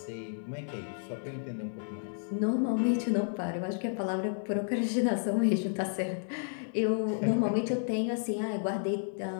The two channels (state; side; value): silent; right; digital silence